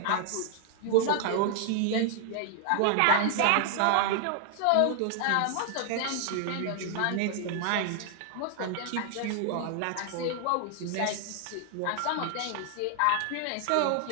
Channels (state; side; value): different; both; correlation 0.00